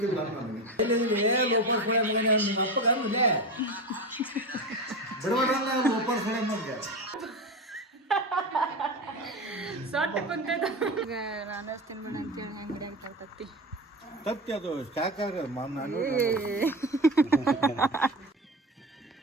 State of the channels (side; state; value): both; normal; correlation 0.23